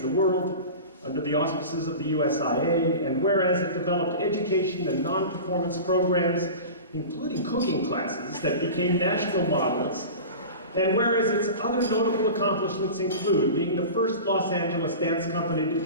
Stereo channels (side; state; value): both; inverted; correlation -0.33